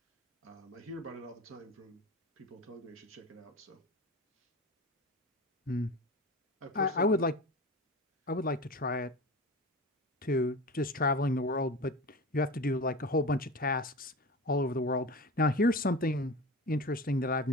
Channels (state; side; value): normal; both; correlation 0.31